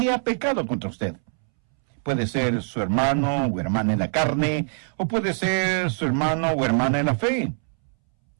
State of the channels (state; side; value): silent; left; 63 dB below the other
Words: ha pecado contra usted. Puede ser su hermano o hermana en la carne, o puede ser su hermano o hermana en la fe,